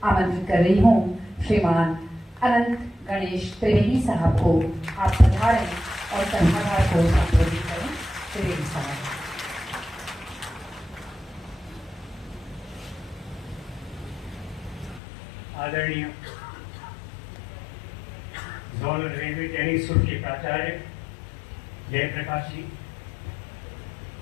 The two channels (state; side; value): drops out; right; at 15.0 s